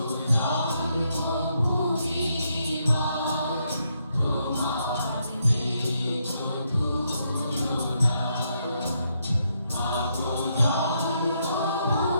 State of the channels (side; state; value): both; inverted; correlation -0.78